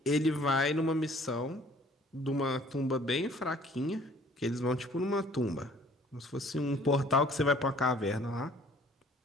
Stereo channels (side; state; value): both; normal; correlation 0.55